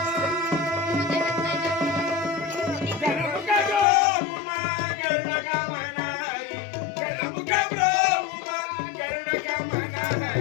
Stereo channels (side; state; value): right; drops out; at 3.9 s